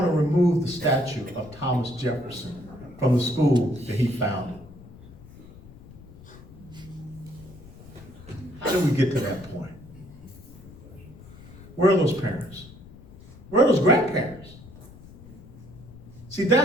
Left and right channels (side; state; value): left; noise; rumble, 19 dB below the sound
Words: to remove the statue of Thomas Jefferson from the school that he founded. How did we get to that point? Where are those parents? Where are those grandparents? See,